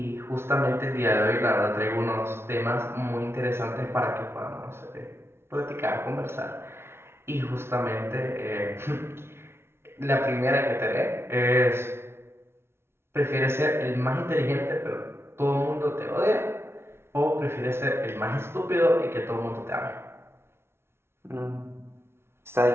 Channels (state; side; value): late; left; 0.12 ms